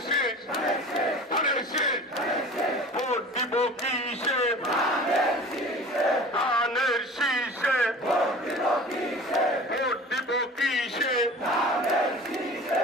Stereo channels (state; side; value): normal; both; correlation 0.40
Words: শীষ, ধানের শীষ। ভোট দিব কিসে? ধানের শীষে। ভোট দিব কিসে?